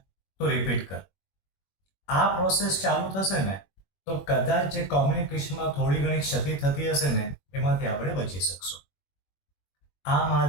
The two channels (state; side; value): late; right; 21 ms